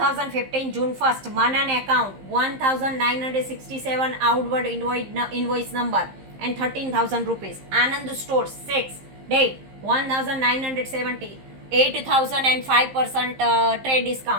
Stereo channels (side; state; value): left; late; 15 ms